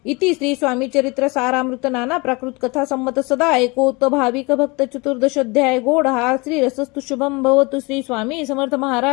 इति श्री स्वामी चरित्र सारामृत नाना प्राकृत कथा संमत सदा ऐकोत भाविक भक्त. चतुर्दशोध्याय गोड हा श्री रसस्तु शुभम भवतु. श्री स्वामी समर्थ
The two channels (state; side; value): quieter; right; 26.6 dB